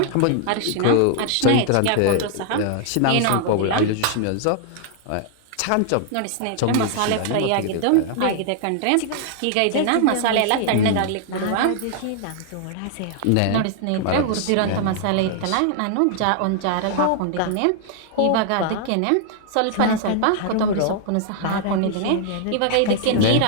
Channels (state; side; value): different; both; correlation 0.00